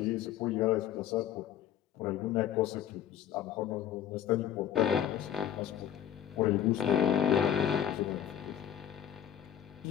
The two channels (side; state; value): right; quieter; 10.0 dB